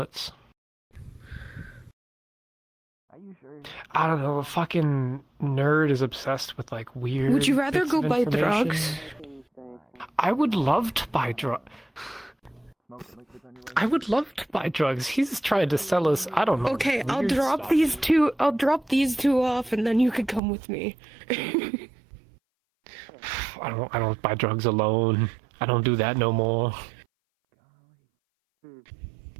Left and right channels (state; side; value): drops out; left; at 20.4 s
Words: Are you sure? I don't know, a fucking nerd is obsessed with like weird. Would you rather bits go of buy information. drugs? I would love to buy drugs. I would love to buy drugs. He's trying to sell us. I don't know. Okay, I'll weird drop stuff. these two. I'll drop these two off, and then you can come with me. I don't buy drugs alone. I don't do that no more.